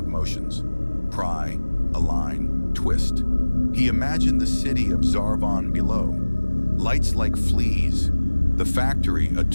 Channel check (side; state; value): both; inverted; correlation -1.00